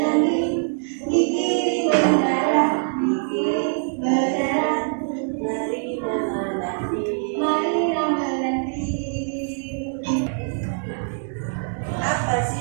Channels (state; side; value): silent; left; digital silence